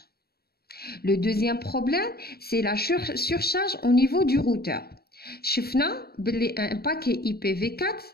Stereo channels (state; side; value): late; right; 0.45 ms